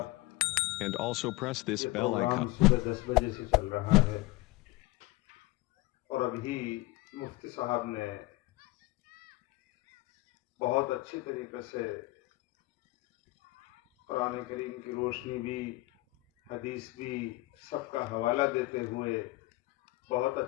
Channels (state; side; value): quieter; right; 19.7 dB